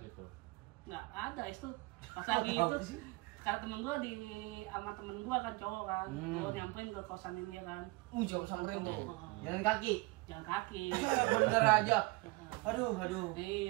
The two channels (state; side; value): quieter; left; 23.7 dB